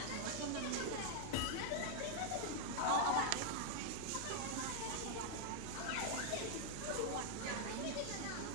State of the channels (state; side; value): different; both; correlation 0.00